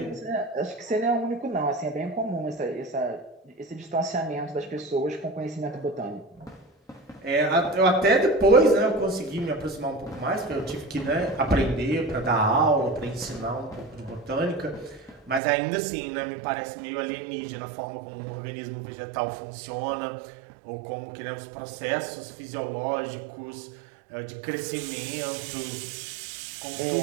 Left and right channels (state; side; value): drops out; left; at 15.4 s